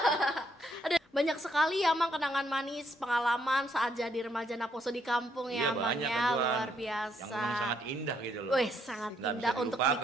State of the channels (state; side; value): normal; both; correlation 0.73